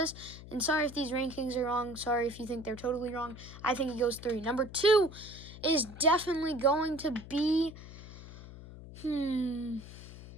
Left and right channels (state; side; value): noise; left; hum, 14 dB below the sound